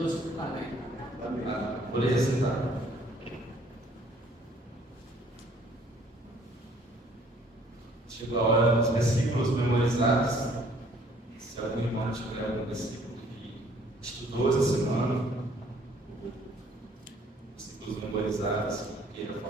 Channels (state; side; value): normal; both; correlation 0.59